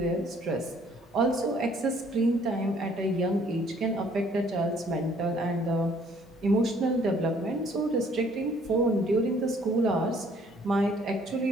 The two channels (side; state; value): both; normal; correlation 0.60